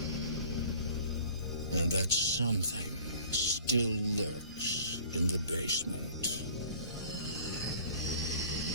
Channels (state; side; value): inverted; both; correlation -0.48